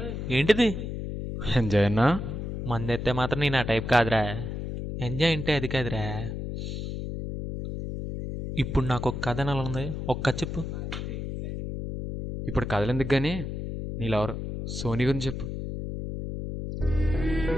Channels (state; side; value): noise; left; hum, 5 dB below the sound